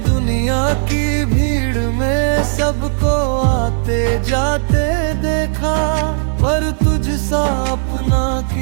दुनिया की भीड़ में सबको आते जाते देखा, पर तुझसा अपना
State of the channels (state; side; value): silent; left; digital silence